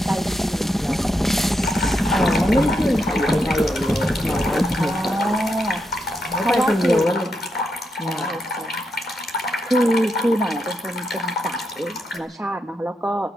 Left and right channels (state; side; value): normal; both; correlation 0.83